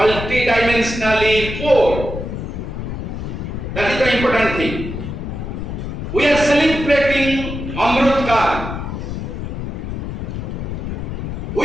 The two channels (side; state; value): left; noise; rumble, 5 dB below the sound